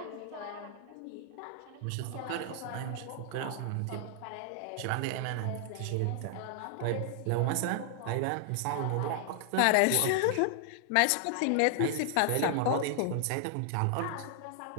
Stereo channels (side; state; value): both; different; correlation 0.00